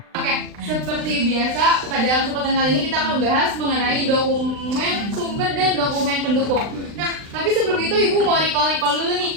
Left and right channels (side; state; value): left; late; 39 ms